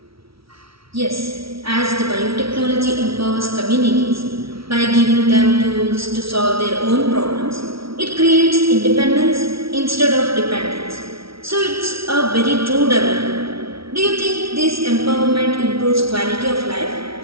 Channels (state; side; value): late; left; 0.75 ms